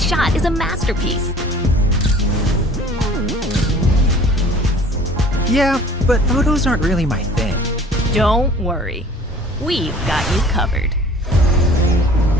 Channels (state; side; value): normal; both; correlation 0.49